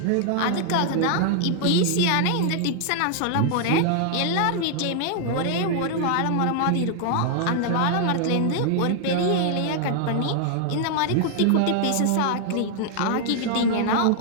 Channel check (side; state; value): both; different; correlation 0.00